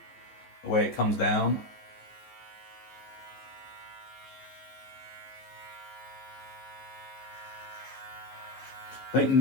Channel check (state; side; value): late; right; 14 ms